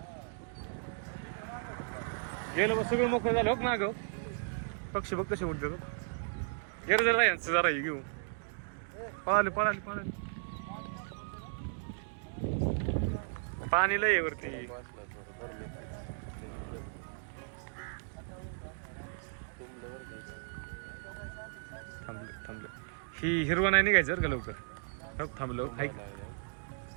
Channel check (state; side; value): silent; left; digital silence